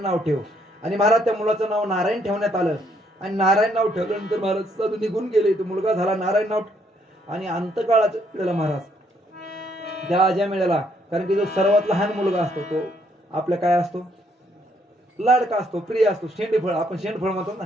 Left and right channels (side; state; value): both; normal; correlation 0.70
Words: नाव ठेव. आणि महाराज त्या मुलाचं नाव नारायण ठेवण्यात आलं. आणि नारायण नाव ठेवल्यानंतर महाराज साधू निघून गेले. तो मुलगा झाला नारायण नाव. आणि अंतकाळाच्या वेळेला महाराज त्या अजामिळाला, कारण की जो सर्वात लहान मुलगा असतो तो आपल्या काय असतो, लाडका असतो, प्रिय असतो, शेंडफळ, आपण शेंडफळ म्हणतो